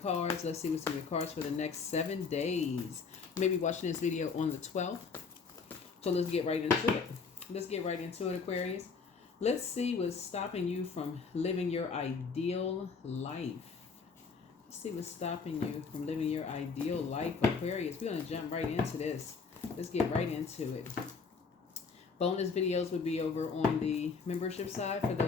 Let's see what's in your cards for the next 7 days. You may be watching this video on the 12th. So let's get right into it. Let's get right into it, Aquarius. Let's see what's stopping you from living your ideal life. See what's stopping you from living your ideal life, Aquarius. We're going to jump right into this. Let's get right into it. Bonus videos will be over on the membership side for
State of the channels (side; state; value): right; quieter; 5.1 dB